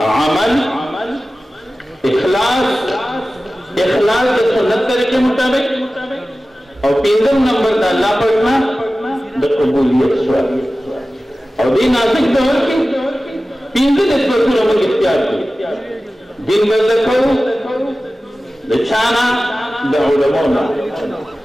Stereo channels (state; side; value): normal; both; correlation 0.96